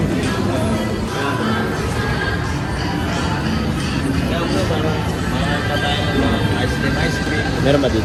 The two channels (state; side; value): identical; both; correlation 1.00